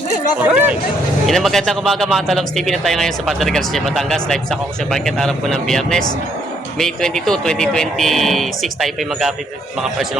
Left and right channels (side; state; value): both; normal; correlation 0.70